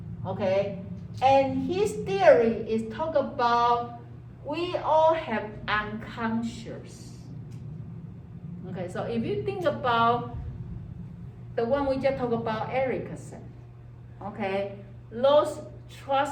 Okay, and his theory is talk about we all have unconscious. Okay, so if you think about the one we just talked about, Erickson, okay, those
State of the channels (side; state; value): both; identical; correlation 1.00